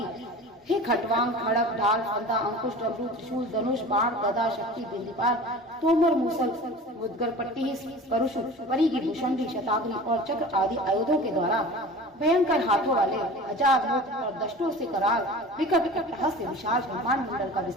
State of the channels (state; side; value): normal; both; correlation 0.38